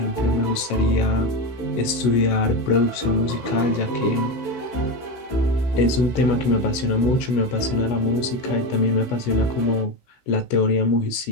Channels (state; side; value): late; right; 16 ms